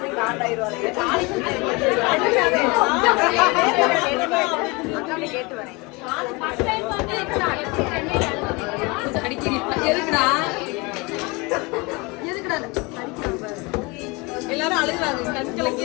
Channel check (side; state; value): right; quieter; 26.6 dB